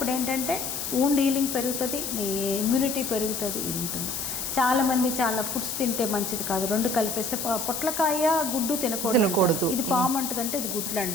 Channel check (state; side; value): noise; left; hiss, 4 dB below the sound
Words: ఏంటంటే వూండ్ హీలింగ్ పెరుగుతుంది, నీ ఇమ్యూనిటీ పెరుగుతుంది, ఇది ఉంటుంది. చాలామంది చాలా ఫుడ్స్ తింటే మంచిది కాదు, రెండు కలిపేస్తే పొట్లకాయ గుడ్డు తినకూడదు. ఇది పాము అంటుందంటే ఇది గుడ్లు